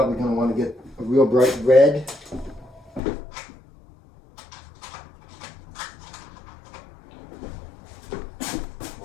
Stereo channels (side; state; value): right; drops out; at 3.0 s